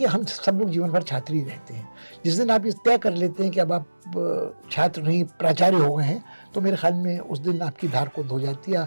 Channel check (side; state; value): both; inverted; correlation -1.00